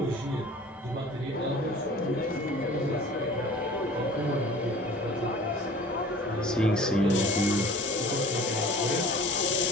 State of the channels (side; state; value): both; normal; correlation 0.45